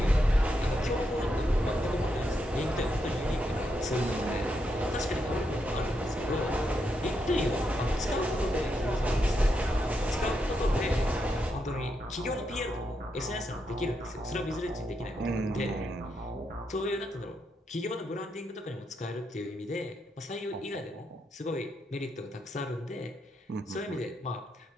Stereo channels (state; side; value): normal; both; correlation 0.82